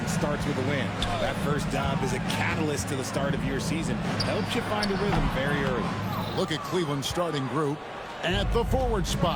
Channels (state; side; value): identical; both; correlation 1.00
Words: starts with a win. That first dub is a catalyst to the start of your season. Helps you find a rhythm very early. Look at Cleveland's starting group. At the forward